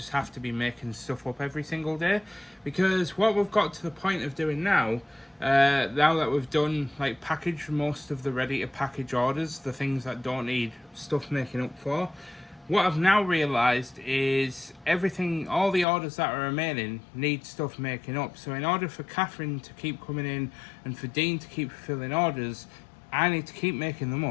have to be making stuff up every single day, because what we've got to the point of doing now that we've done, like, packaged most of the ready to package orders, the things that don't need stuff making up for, what I've now realised is everything, all the orders that are remaining need stuff making up. So in order for Catherine to keep coming in and for Dean to keep fulfilling orders, I need to keep making them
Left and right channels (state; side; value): drops out; right; at 15.9 s